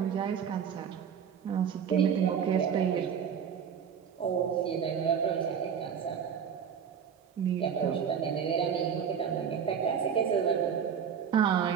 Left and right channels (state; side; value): quieter; left; 7.7 dB